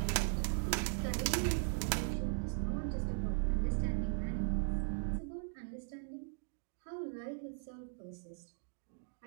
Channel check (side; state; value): left; silent; digital silence